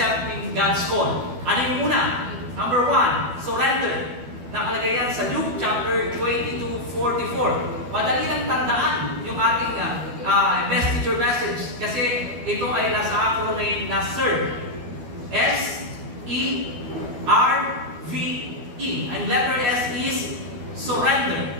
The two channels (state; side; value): late; left; 12 ms